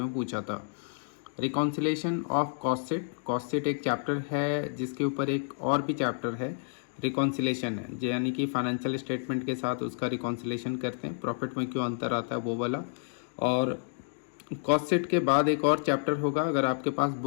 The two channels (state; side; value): silent; right; digital silence